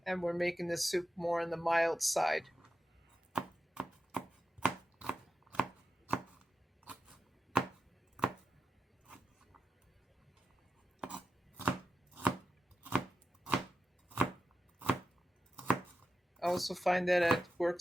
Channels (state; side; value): normal; both; correlation 0.90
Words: And we're making the soup more on the mild side. I also find that it